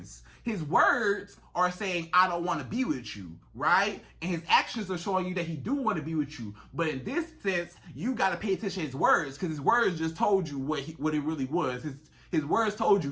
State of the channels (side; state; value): both; identical; correlation 1.00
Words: His words are saying, I don't want to be with you, right? And his actions are showing you that he do want to be with you. But in this sense, you got to pay attention to his words, because his words just told you what it really was. His words told